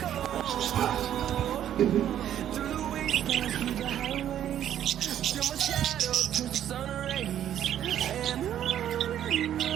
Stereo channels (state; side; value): quieter; left; 10.7 dB